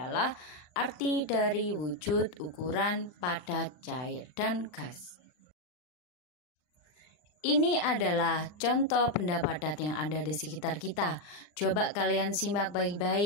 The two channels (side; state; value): right; late; 39 ms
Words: arti dari wujud, ukuran, padat, cair, dan gas. Ini adalah contoh benda padat yang ada di sekitar kita. Coba kalian simak